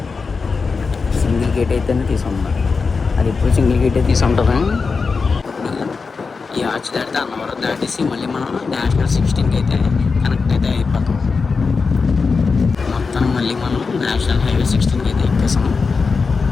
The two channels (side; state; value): right; quieter; 4.7 dB